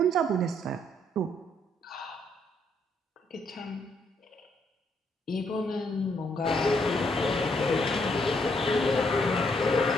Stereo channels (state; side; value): normal; both; correlation 0.72